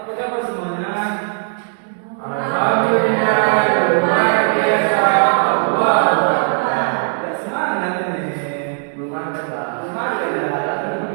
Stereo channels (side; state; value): left; silent; 67 dB below the other